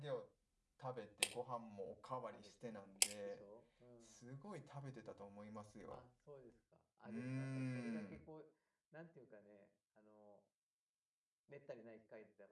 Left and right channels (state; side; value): identical; both; correlation 1.00